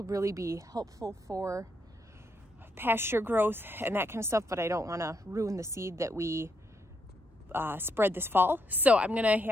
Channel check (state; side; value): normal; both; correlation 0.77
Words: really be helpful for pasture growth and that kind of stuff, but I don't want to ruin the seed that we spread this fall. So I'm going to